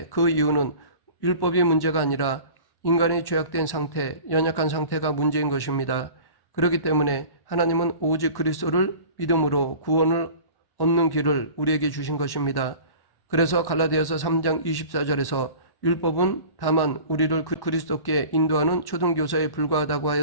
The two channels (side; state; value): right; late; 1.1 ms